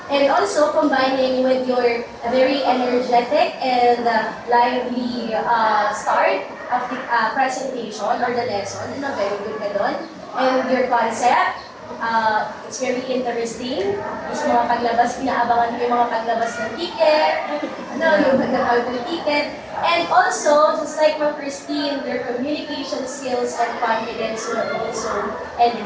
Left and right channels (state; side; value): identical; both; correlation 1.00